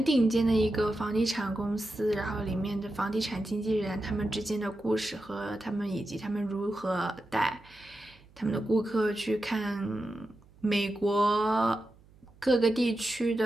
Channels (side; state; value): right; noise; hum, 27 dB below the sound